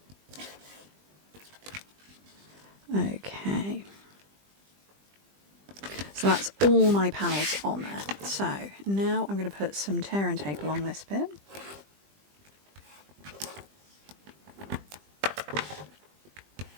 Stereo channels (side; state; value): left; late; 20 ms